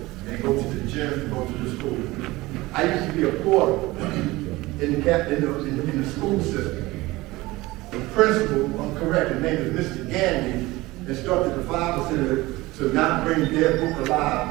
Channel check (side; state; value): left; quieter; 20.0 dB